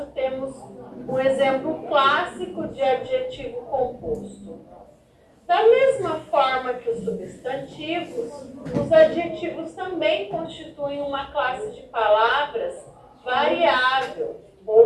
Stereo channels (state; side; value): identical; both; correlation 1.00